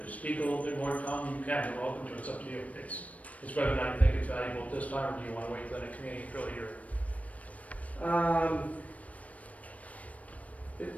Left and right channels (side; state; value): right; late; 0.068 ms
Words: speak a little bit more, Tom, you can. We're open to it. It's up to you. It's whether or not you think it's valuable at this time, or do you want to wait till the next meeting? It's really your. It